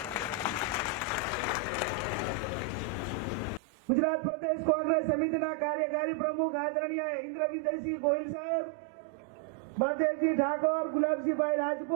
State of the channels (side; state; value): left; drops out; at 3.6 s